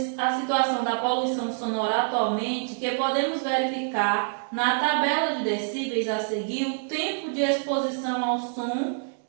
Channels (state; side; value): silent; left; digital silence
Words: situação da poluição sonora atualmente que podemos verificar na tabela de decíveis a seguir o tempo de exposição ao som